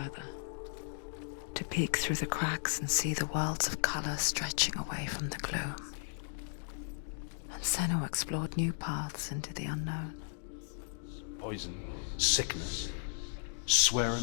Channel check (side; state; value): right; silent; digital silence